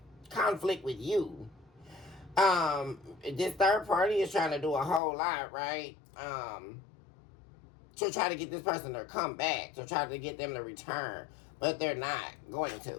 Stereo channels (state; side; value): drops out; right; at 5.0 s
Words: conflict with you. This third party is trying to do a whole lot, right? To try to get this person to come back, to try to get them to return, but they're not going